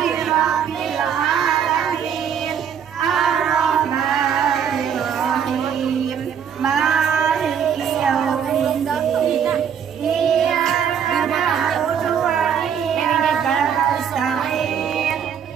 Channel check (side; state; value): left; quieter; 8.1 dB